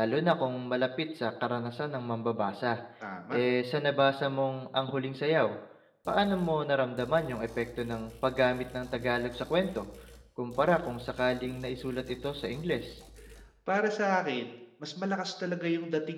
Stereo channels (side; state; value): both; identical; correlation 1.00